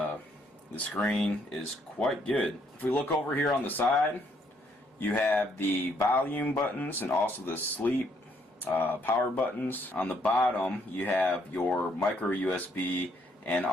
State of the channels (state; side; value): normal; both; correlation 0.70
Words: screen is quite good. If we look over here on the side, you have the volume buttons and also the sleep power buttons. On the bottom you have your micro USB and